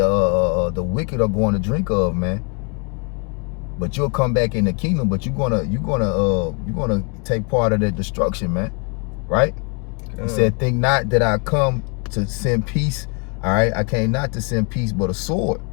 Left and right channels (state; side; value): quieter; right; 35.0 dB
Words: wicked are going to drink of, man. But you'll come back in the kingdom, but you're gonna take part of that destruction, man. Right? He said, think not that I come to send peace. All right, I came not to send peace, but a sword.